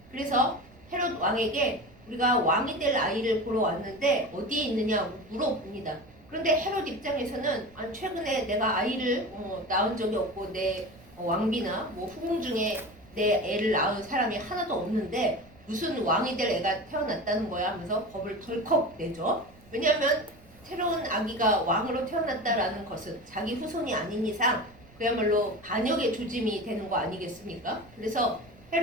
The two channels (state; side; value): noise; right; rumble, 25 dB below the sound